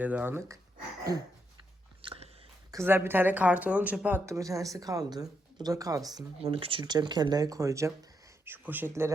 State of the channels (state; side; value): normal; both; correlation 0.80